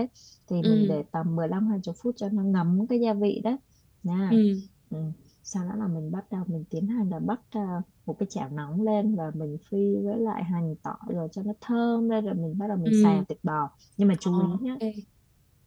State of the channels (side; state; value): both; identical; correlation 1.00